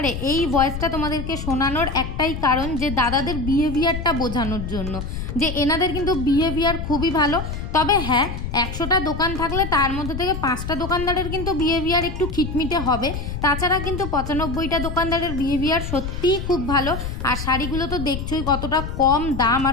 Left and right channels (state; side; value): noise; left; rumble, 6 dB below the sound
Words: এই ভয়েসটা তোমাদেরকে শোনানোর একটাই কারণ, যে দাদাদের বিহেভিয়ারটা বোঝানোর জন্য, যে এনাদের কিন্তু বিহেভিয়ার খুবই ভালো। তবে হ্যাঁ, 100টা দোকান থাকলে তার মধ্যে থেকে 5টা দোকানদারের কিন্তু বিহেভিয়ার একটু খিটমিটে হবে। তাছাড়া কিন্তু 95টা দোকানদারের বিহেভিয়ার সত্যিই খুব ভালো। আর শাড়িগুলো তো দেখছোই কতটা কম দাম